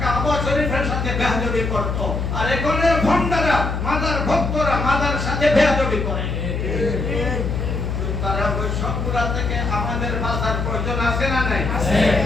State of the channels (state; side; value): noise; left; hum, 2 dB below the sound